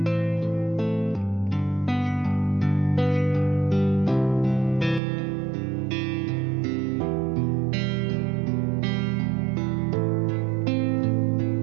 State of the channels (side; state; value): left; drops out; at 5.0 s